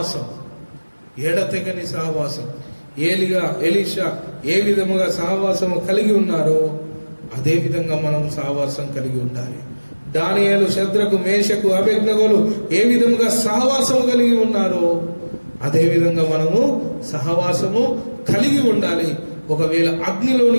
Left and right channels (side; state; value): both; inverted; correlation -1.00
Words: ఎడతెగని సహవాసం. ఎలీషా ఏ విధముగా సహవాసం కలిగి ఉన్నారో అదే విధంగా మనం సహవాసం కలిగి ఉండాలి. దానియేలు, శద్రకు, మేషకు, అబేద్నెగోలు ఏ విధంగా సహవాసం కలిగి ఉన్నారో అదే విధంగా మనము సహవాసము కలిగి ఉండాలి. ఒకవేళ